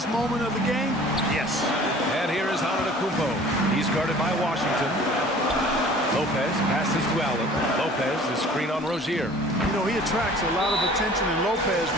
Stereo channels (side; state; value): both; normal; correlation 0.48